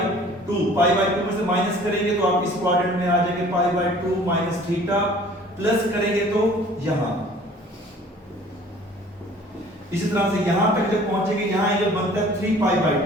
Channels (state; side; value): normal; both; correlation 0.50